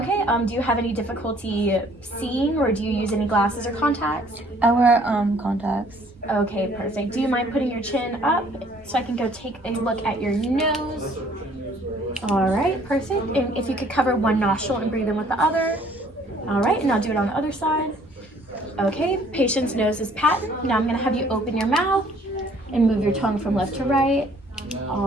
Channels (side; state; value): both; normal; correlation 0.59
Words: do you have any difficulty seeing, or do you use any glasses or contacts? I wear contacts. Okay, perfect. Do you mind putting your chin up so I can go take a look at your nose? All right, perfect. And if you could cover one nostril and breathe in with the other. All right, and I'll do it on the other side. Okay, patient's nose is patent. Now I'm going to have you open your mouth and move your tongue from left to right.